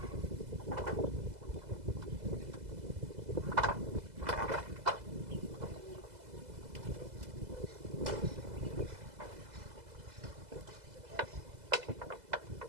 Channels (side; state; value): left; late; 2.0 ms